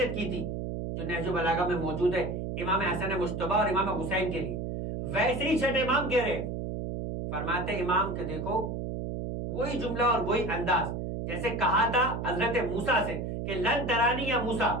کی تھی جو نہج البلاغہ میں موجود ہے امام حسن مجتبی اور امام حسین کے لیے, ویسے ہی چھٹے امام کہہ رہے. فرماتے امام کہ دیکھو وہی جملہ اور وہی انداز جیسے کہا تھا حضرت موسیٰ سے کہ لن ترانی یا موسیٰ,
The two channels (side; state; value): right; noise; hum, 4 dB below the sound